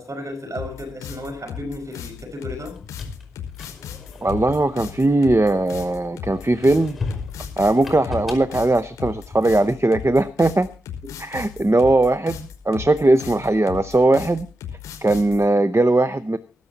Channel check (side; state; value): both; normal; correlation 0.89